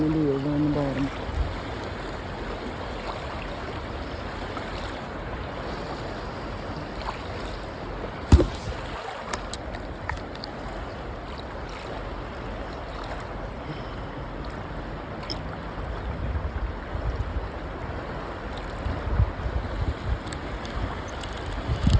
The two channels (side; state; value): both; identical; correlation 1.00